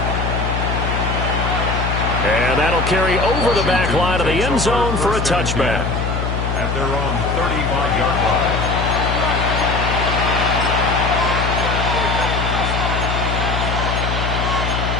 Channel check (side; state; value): left; noise; hum, 1 dB below the sound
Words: And that'll carry over the back line of the end zone for a touchback. At their own 35-yard line.